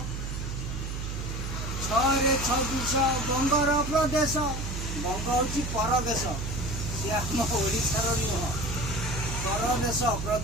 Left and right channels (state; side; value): noise; right; hum, 5 dB below the sound